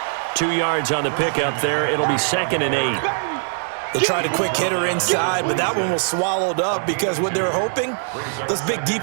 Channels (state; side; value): silent; left; digital silence